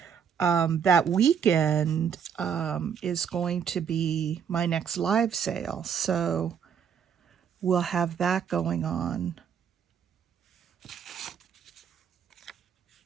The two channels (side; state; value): left; quieter; 7.6 dB